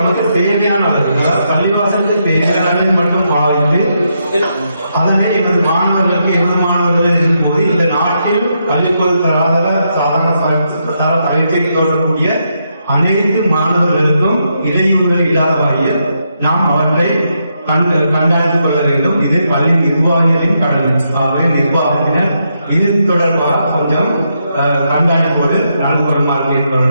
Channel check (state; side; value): inverted; both; correlation -0.80